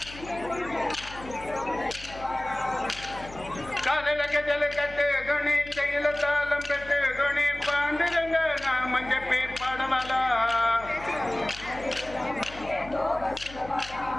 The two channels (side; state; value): left; noise; hum, 16 dB below the sound